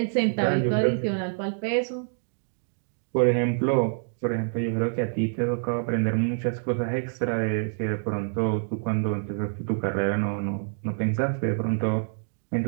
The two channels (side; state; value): left; silent; digital silence